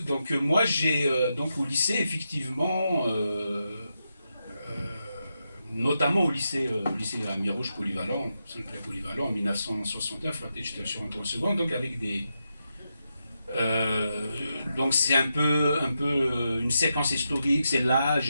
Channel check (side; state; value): both; inverted; correlation -0.86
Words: moi j'ai donc au lycée effectivement, notamment au lycée à Mirouge polyvalent, Saint-Clair polyvalent en 1969, j'étais sur en seconde, donc avec des donc c'est un peu une séquence historique, c'est